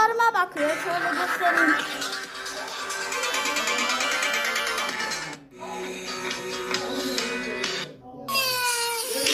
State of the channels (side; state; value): both; identical; correlation 1.00